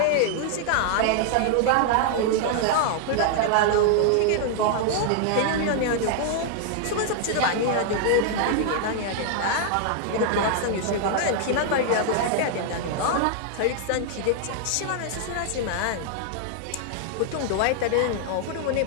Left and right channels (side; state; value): both; different; correlation 0.00